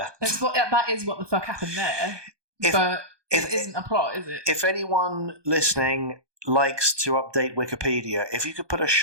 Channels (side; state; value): left; late; 1.2 ms